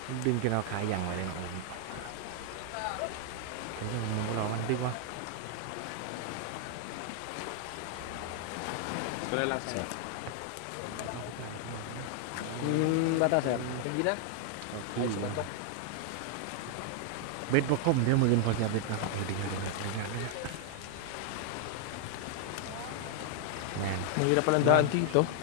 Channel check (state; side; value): different; both; correlation 0.00